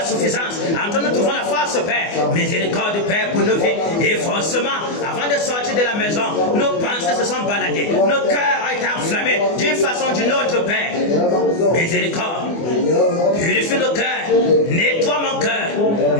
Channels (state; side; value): late; right; 24 ms